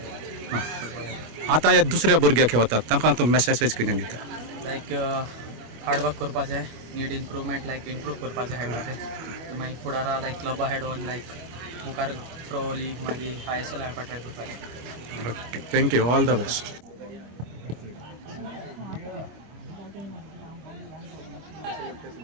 फुटबॉलाचें. आतां हे दुसऱ्या भुरग्याक खेळटात तांकां तूं मॅसेज कितें दिता? लायक हार्ड वर्क करपाचें, नीड इम्प्रूवमेंट लायक इम्प्रूव करपाचें खेळपाचें. मागीर फुडारा लायक क्लबा हेड ऑन लायक मुखार प्रो लीग मागीर ISL खेळपाक ट्राय करपाचें. Okay, thank you, all the best.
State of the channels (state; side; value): late; left; 25 ms